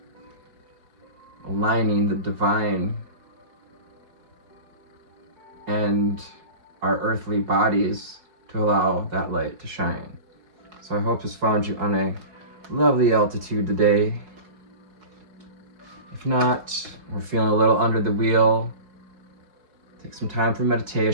aligning the divine and our earthly bodies to allow that light to shine. So I hope this found you on a lovely altitude today. If not, we're feeling a little under the wheel, take some time for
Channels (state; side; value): late; left; 4.7 ms